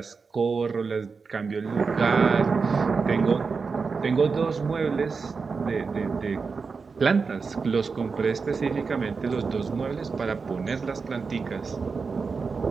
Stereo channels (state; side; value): quieter; left; 4.9 dB